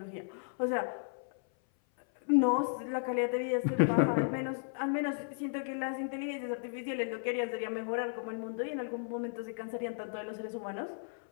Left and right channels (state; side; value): silent; right; 55 dB below the other